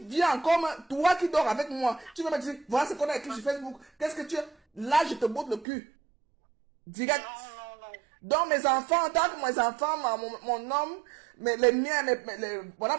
viens comme toi qui dors avec moi, tu vas me dire, voilà ce qu'on a écrit sur Facebook, qu'est-ce que tu es? Là, je te botte le cul. Direct. Non. Donc, mes enfants, tant que mes enfants, mon homme, les miens, voilà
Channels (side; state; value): left; drops out; at 5.7 s